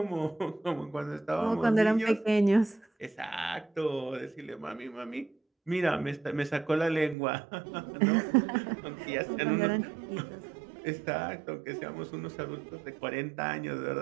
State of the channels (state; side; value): drops out; left; at 7.2 s